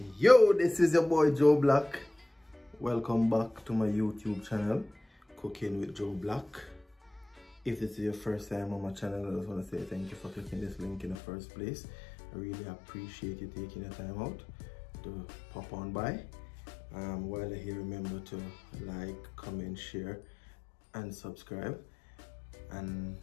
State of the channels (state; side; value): drops out; right; at 11.2 s